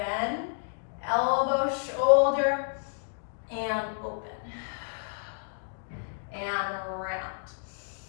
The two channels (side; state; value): right; silent; digital silence